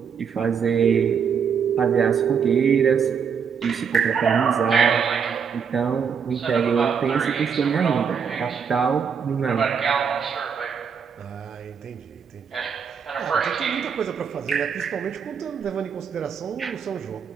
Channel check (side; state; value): left; quieter; 6.7 dB